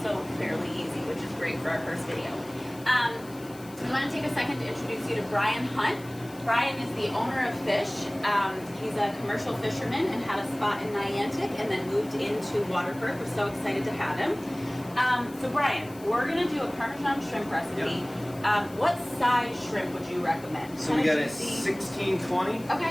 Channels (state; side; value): noise; left; hiss, 21 dB below the sound